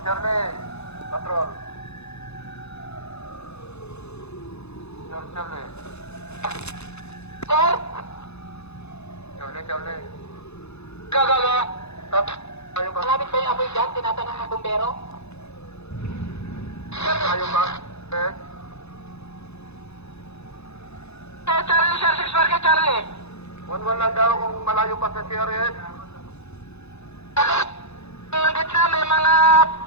Charlie, patrol. Sir Charlie. Sir? Charlie. Gagawa. Stop. Ayaw ba? Malapit ba yung apoy dyan? Tinatanong ng bumbero? Ayaw ba? Eh? Charlie, sir. 6 Market, Charlie. 1-1 lang daw kung malayo pa sa CRS. Gitna, may mga...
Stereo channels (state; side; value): late; right; 0.80 ms